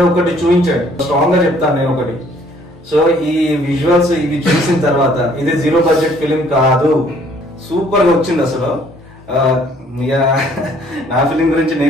ఒకటి చూపించాడు. స్ట్రాంగ్ గా చెప్తాను నేను ఒకటి. సో ఈ విజువల్స్ ఇవి చూసిన తర్వాత ఇది జీరో బడ్జెట్ ఫిలిం కాదు, సూపర్ గా వచ్చింది అసలు. నా ఫిలిం గురించి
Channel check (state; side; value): normal; both; correlation 0.61